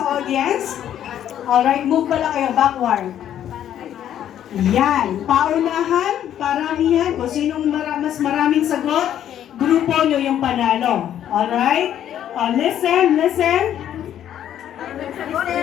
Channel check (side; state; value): right; quieter; 10.6 dB